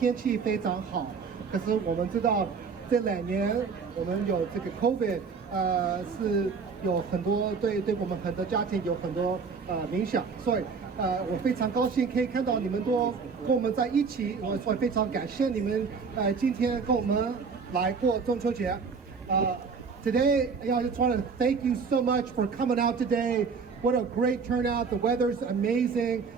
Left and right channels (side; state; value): left; quieter; 5.4 dB